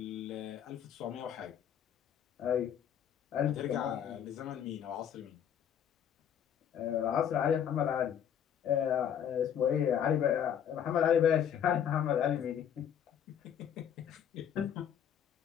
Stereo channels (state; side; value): quieter; right; 9.0 dB